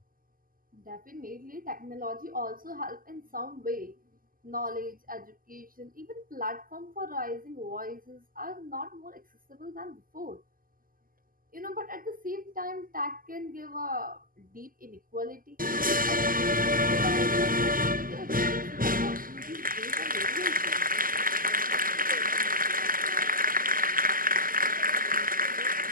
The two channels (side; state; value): left; late; 0.41 ms